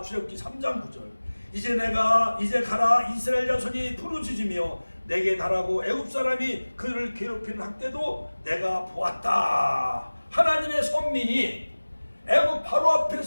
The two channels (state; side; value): inverted; both; correlation -1.00